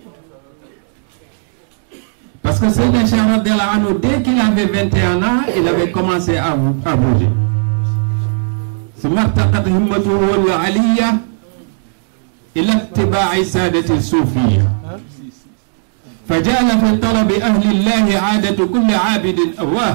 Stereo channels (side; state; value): left; silent; digital silence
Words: Parce que Sidi Cheikh radiyallahu anhu, dès qu'il avait 21 ans, il avait commencé à bouger. ثم ارتقت همته العلية إلى اتباع سادة الصوفية فجعل في طلب أهل الله عادة كل عابد